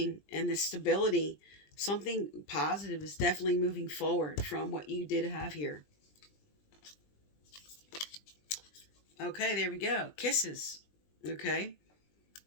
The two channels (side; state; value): right; late; 20 ms